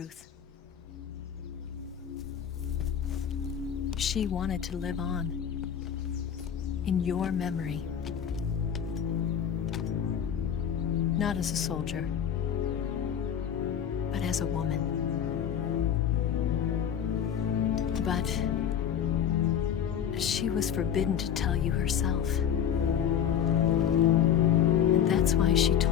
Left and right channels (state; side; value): quieter; right; 8.7 dB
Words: She wanted to live on, in your memory. Not as a soldier, but as a woman. But she was forbidden to tell you herself. And that's why she